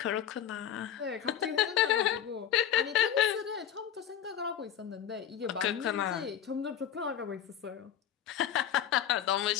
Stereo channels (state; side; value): quieter; right; 9.7 dB